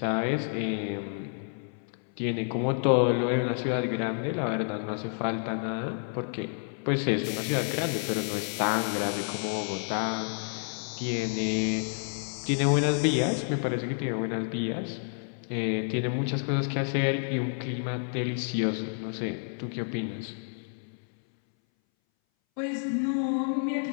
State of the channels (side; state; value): right; silent; 58 dB below the other